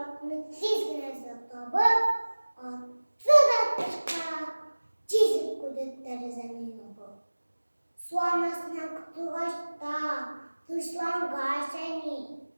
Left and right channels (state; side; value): inverted; both; correlation -1.00